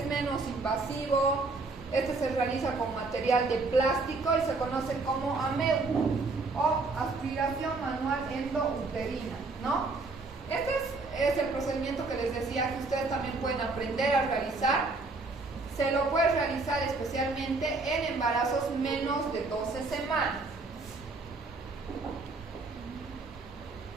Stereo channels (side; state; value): left; quieter; 3.6 dB